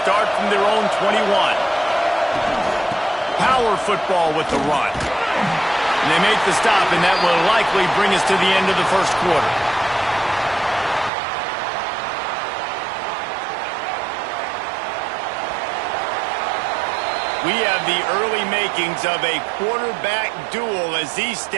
from their own 21. Power football with the run. And they make the stop, and that will likely bring us to the end of the first quarter. We have the early makings of a quarterback duel, as these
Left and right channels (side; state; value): left; drops out; at 11.1 s